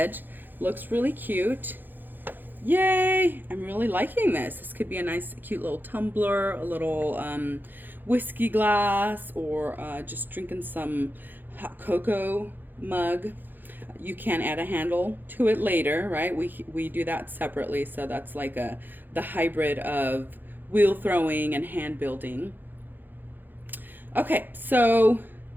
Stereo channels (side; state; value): left; late; 0.090 ms